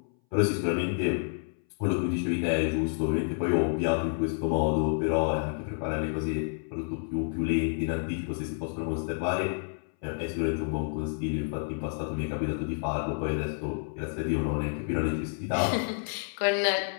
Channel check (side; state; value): right; silent; 58 dB below the other